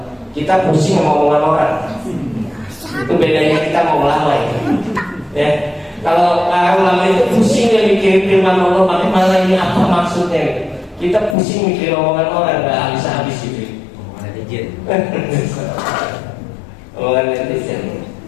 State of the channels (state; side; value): drops out; right; at 11.4 s